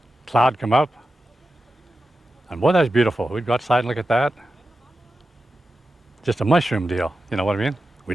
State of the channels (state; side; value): normal; both; correlation 0.92